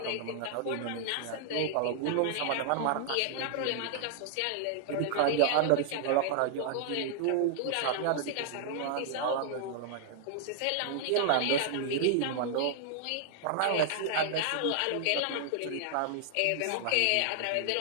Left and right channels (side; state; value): both; different; correlation 0.00